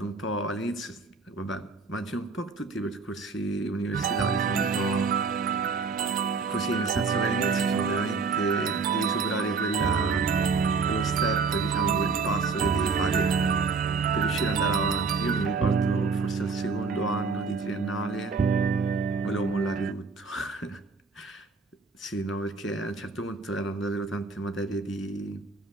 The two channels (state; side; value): quieter; left; 4.6 dB